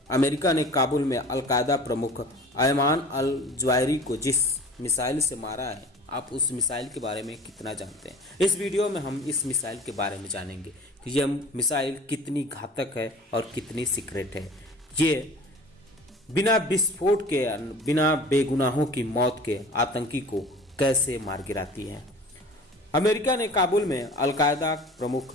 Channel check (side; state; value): both; normal; correlation 0.41